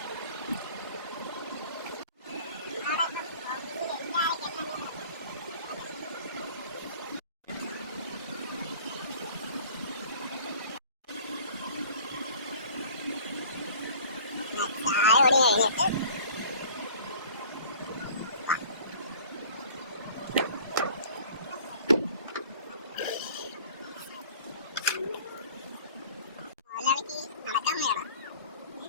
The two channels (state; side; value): inverted; both; correlation -0.47